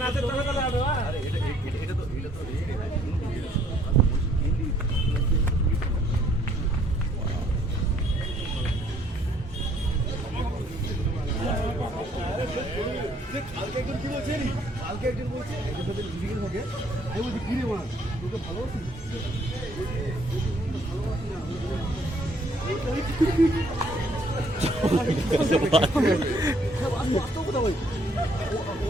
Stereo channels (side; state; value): both; normal; correlation 0.64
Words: নাচের তালে তালে আরো। আরে এটা তো কালকে একজন কি বলছে, কালকে একজন বলছে এদের সাথে মিটিং হবে। আমি বলছি কি রে মা, তোকে ভালোবাসি?